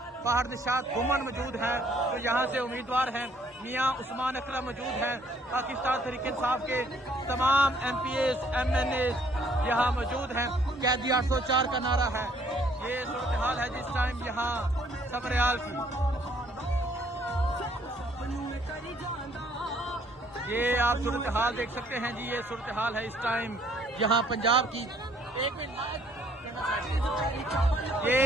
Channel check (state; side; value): normal; both; correlation 0.63